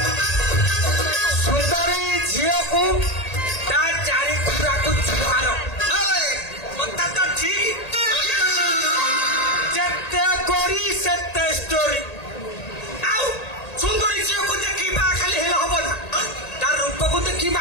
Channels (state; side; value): late; right; 1.8 ms